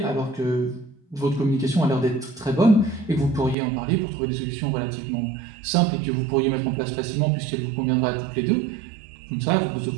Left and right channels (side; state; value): left; drops out; at 3.6 s